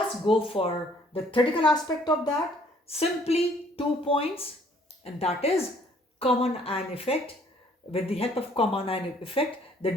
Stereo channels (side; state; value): both; normal; correlation 0.61